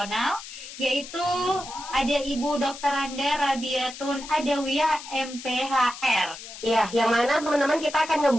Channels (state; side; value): noise; left; hiss, 13 dB below the sound